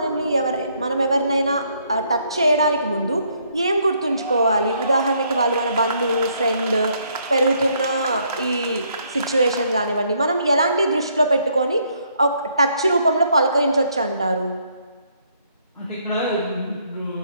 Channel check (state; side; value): inverted; both; correlation -0.69